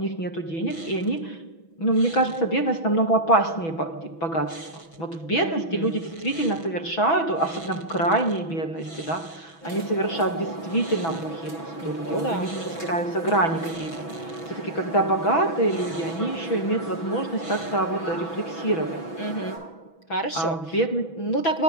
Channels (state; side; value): late; right; 6.1 ms